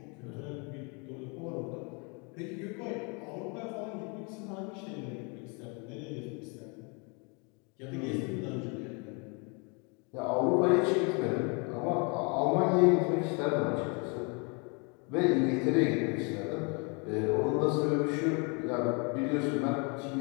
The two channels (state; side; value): quieter; right; 33.2 dB